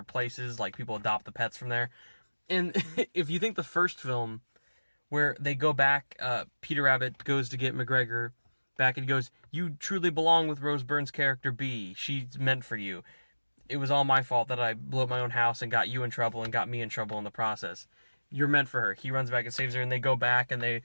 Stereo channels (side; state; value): both; inverted; correlation -1.00